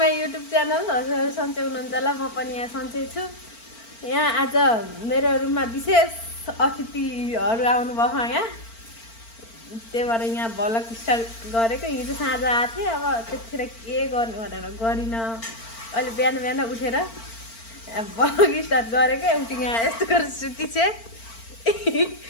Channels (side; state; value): right; late; 4.4 ms